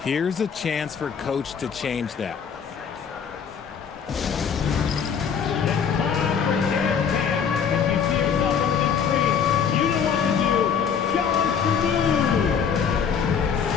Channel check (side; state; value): right; quieter; 7.1 dB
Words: Here's a chance for Coach to change that.